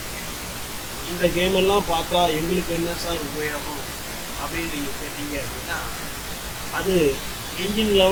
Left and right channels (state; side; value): identical; both; correlation 1.00